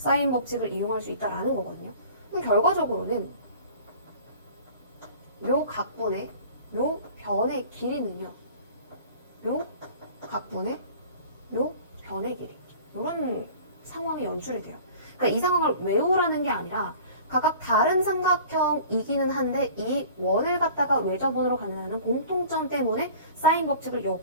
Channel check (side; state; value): both; inverted; correlation -0.44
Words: 법칙을 이용할 수 있다는 거거든요. 그럼 결과적으로는 요 각분의 요 변의 길이는요. 요 각분의 요 변의 길이. 이런 상황이 연출이 돼요. 그러니까 이 상황을 외우라는 게 아니라 각각 다른 삼각형이기는 한데 이 원을 갖다가 외접원으로 갖는다는 공통점 때문에 사인 법칙을